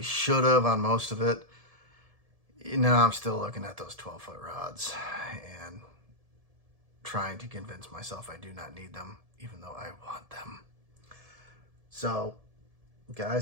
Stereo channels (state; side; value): late; left; 1.7 ms